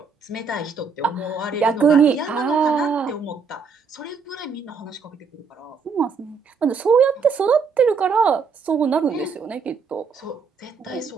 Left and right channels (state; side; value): quieter; left; 5.4 dB